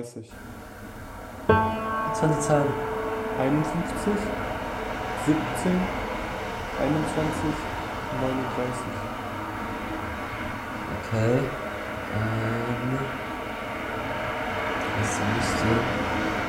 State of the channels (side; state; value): both; identical; correlation 1.00